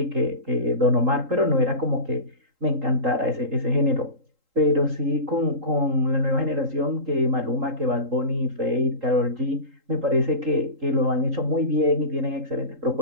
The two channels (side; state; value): left; late; 3.8 ms